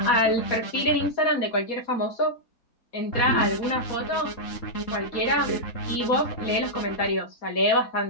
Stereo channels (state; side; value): late; right; 4.2 ms